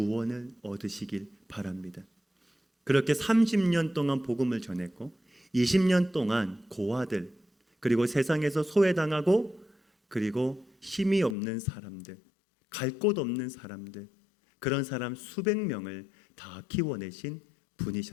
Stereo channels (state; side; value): drops out; right; at 11.4 s